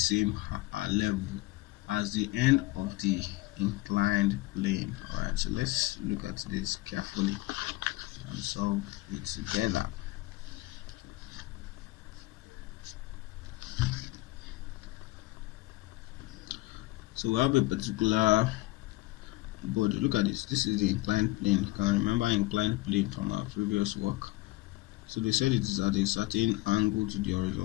level as the end of the inclined plane. Alright, so let's look at this carefully and solve it together. So we have a particular body. Look at this. This is the inclined plane. You can remember inclined plane from our previous work. So they said it is at a certain angle to the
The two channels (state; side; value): quieter; right; 20.1 dB